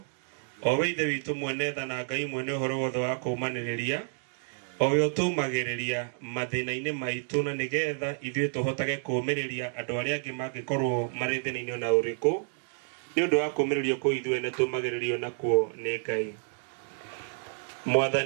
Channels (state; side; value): silent; left; digital silence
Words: o we Ithe witũ mwene tha na Ngai mwene ũhoro wothe wa kũũmanĩrĩria, o we ũtũmagĩrĩria mathĩna-inĩ maitũ na nĩgetha ithuĩ tũhotage kũũmĩrĩria andũ arĩa angĩ mangĩkorwo marĩ thĩna-inĩ na ũrĩkũ, nĩ ũndũ wa kũũmĩrĩrio kũu ithuĩ nĩ tũmagĩrĩrio nakuo nĩ Ngai.